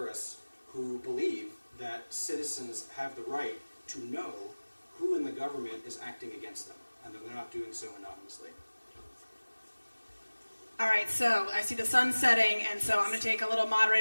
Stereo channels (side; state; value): both; inverted; correlation -1.00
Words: who believe that citizens have the right to know who in the government is acting against them, and that they're not doing so anonymously. All right, so I see the sun setting, and so I'm going to take a little